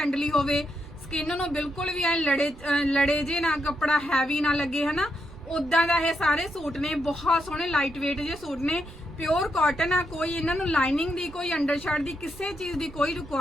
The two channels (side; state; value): right; noise; rumble, 19 dB below the sound